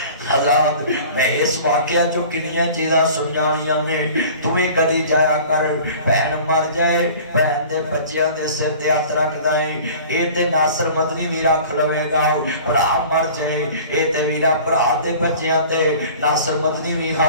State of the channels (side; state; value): both; inverted; correlation -0.44